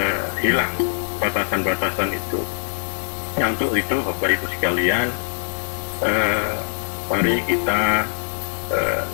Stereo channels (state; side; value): silent; right; 60 dB below the other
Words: hilang batasan-batasan itu. Nah, untuk itu Bapak Ibu sekalian, mari kita